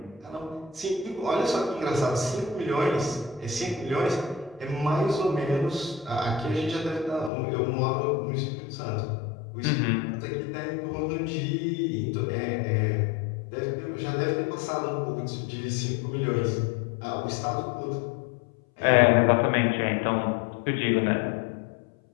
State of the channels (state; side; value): drops out; right; at 7.3 s